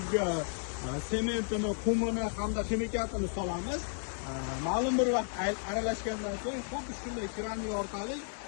sementini, qumini hamda ximikatini solamiz. Ma'lum bir vaqt aralashgandan so'ng xuddi shunday keramik orqali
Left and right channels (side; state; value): right; silent; 56 dB below the other